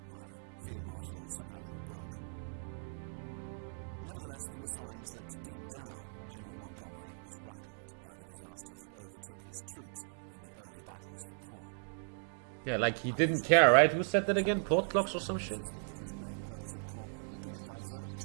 Field Marshal Sir Alan Brooke. Nevertheless, there were signs that deep down, General Montgomery was rattled by the disasters that overtook his troops in the early battles for Caen. Yeah, like he didn't Unusually care, for right? him, Who said that he again? temporized Clocks or and some shit? insisted that his main purpose at Caen had been to divert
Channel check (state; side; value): silent; left; digital silence